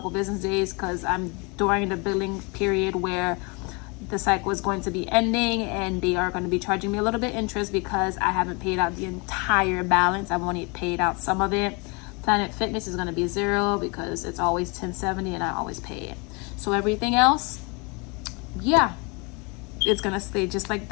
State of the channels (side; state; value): right; quieter; 30.1 dB